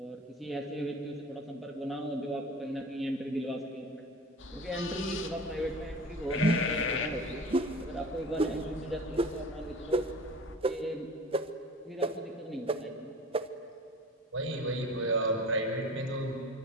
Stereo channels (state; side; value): normal; both; correlation 0.39